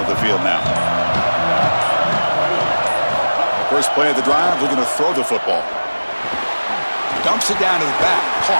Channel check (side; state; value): both; inverted; correlation -1.00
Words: the field now. First play of the drive, looking to throw the football. Dumps it down to the back.